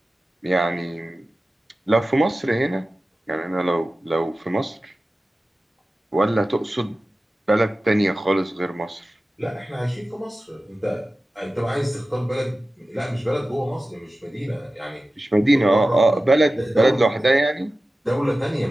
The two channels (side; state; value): both; normal; correlation 0.95